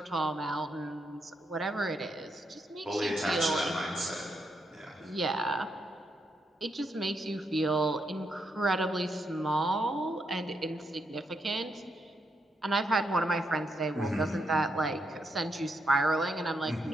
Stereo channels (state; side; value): normal; both; correlation 0.80